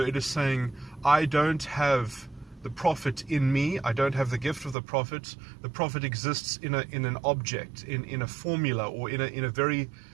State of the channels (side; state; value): left; drops out; at 4.8 s